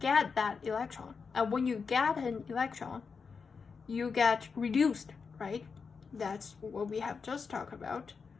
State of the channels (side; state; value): right; quieter; 5.4 dB